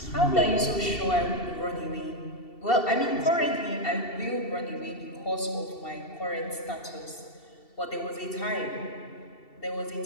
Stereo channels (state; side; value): late; right; 2.7 ms